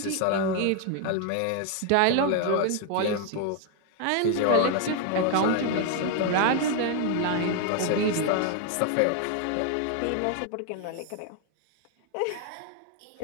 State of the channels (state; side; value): different; both; correlation 0.00